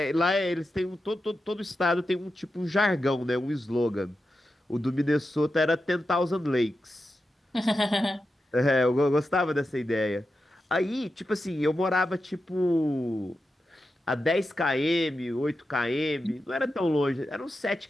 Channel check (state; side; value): normal; both; correlation 0.90